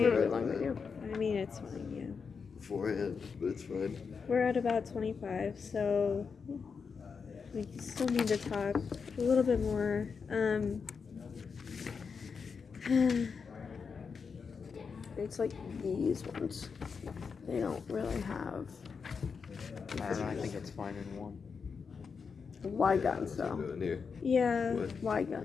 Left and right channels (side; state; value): right; quieter; 5.6 dB